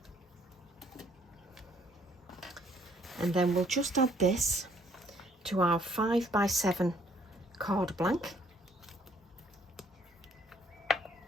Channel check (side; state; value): both; normal; correlation 0.63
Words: And then we'll just add this to our 5x7 card blank.